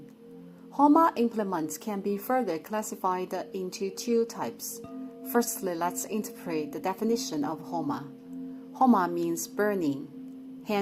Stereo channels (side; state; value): both; identical; correlation 1.00